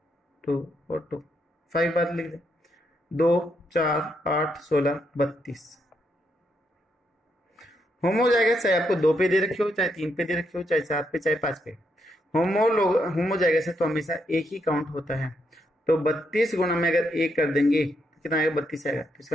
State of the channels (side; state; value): both; normal; correlation 0.78